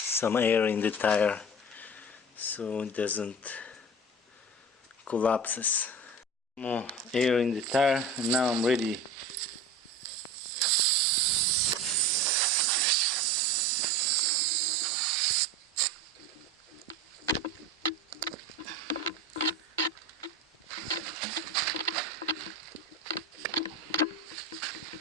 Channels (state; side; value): normal; both; correlation 0.32